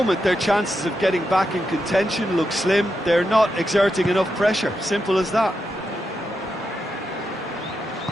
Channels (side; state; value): both; normal; correlation 0.85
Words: their chances of getting back in contention look slim. They're not exerting enough pressure. Simple as that.